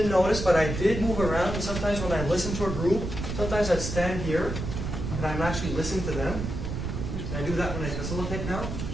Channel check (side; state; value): right; noise; rumble, 4 dB below the sound